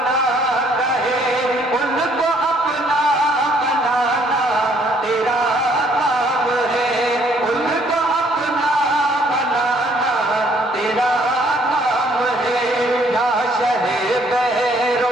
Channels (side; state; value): both; normal; correlation 0.64